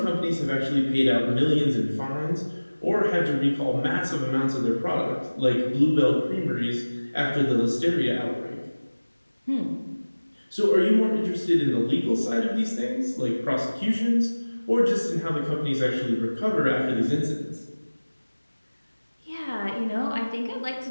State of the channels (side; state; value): both; inverted; correlation -1.00